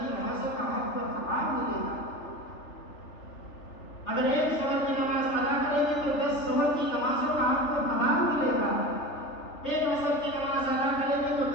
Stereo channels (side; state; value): right; late; 3.3 ms